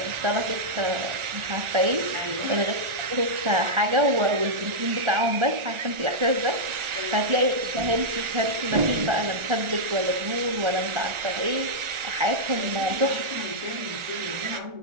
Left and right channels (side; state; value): left; late; 1.4 ms